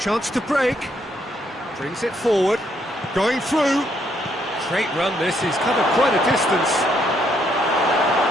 to break. Brings it forward. Going through. Great run this. He's covered quite a distance.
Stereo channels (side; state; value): both; normal; correlation 0.72